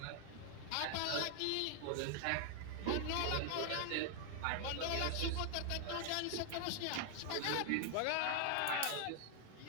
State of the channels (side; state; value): both; different; correlation 0.00